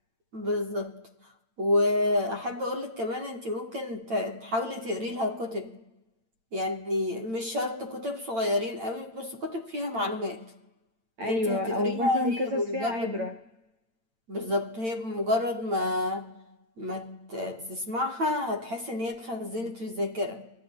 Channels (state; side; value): late; left; 8.8 ms